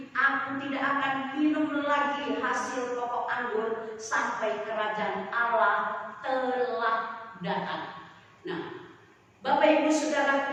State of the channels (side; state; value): both; identical; correlation 1.00